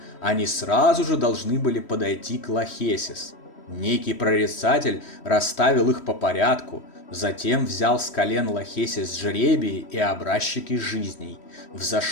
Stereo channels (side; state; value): right; late; 3.1 ms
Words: они сразу же должны были подойти к Лахесис. Некий прорицатель расставил их по порядку, затем взял с колен Лахесис жребии и образчики жизней,